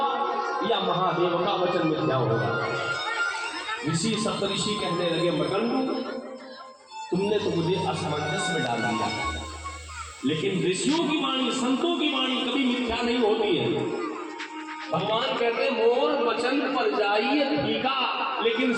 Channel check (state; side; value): identical; both; correlation 1.00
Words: या महादेव का वचन मिथ्या होगा? ऋषि सप्तऋषि कहने लगे, मरकंडू, तुमने तो मुझे असमंजस में डाल दिया, लेकिन ऋषियों की वाणी, संतों की वाणी कभी मिथ्या नहीं होती है। भगवान कहते, मोर वचन पर जाइए ठीका, लेकिन